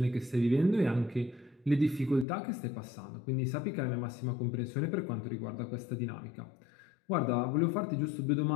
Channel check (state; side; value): drops out; right; at 2.2 s